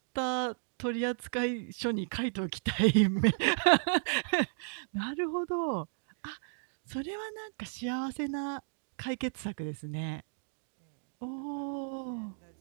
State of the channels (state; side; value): silent; left; digital silence